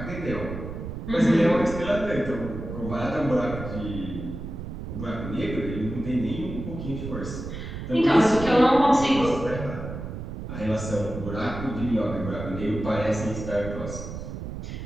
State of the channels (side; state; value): right; noise; rumble, 8 dB below the sound